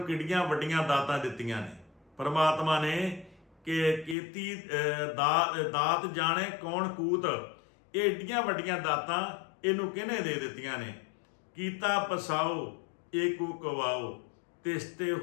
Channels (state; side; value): drops out; right; at 4.2 s